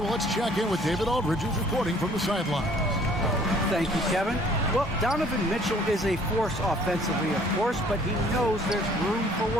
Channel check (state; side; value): normal; both; correlation 0.57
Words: let's check in with David Aldridge, who's reporting from the sidelines. Thank you, Kevin. Well, Donovan Mitchell is a force offensively, of course, but he knows there's room for